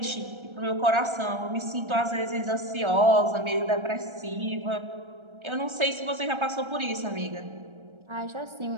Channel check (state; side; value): late; left; 1.3 ms